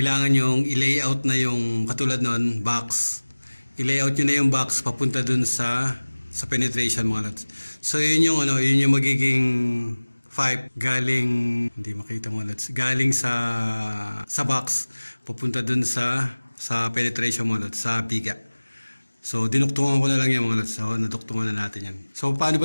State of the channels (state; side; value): inverted; both; correlation -1.00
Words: yung i-layout na yung katulad nun, box. I-layout nyo na yung box papunta dun sa penetration mga lods. So yun yung magiging pipe galing, hindi makita mga lods, galing sa box papunta dun sa penetration mga lods, sa biga. So dinuktungan ko na lang yan mga lods. So naduktungan na natin yan. So paano